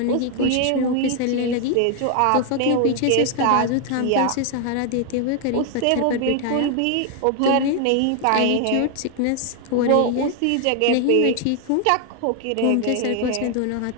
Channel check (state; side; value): different; both; correlation 0.00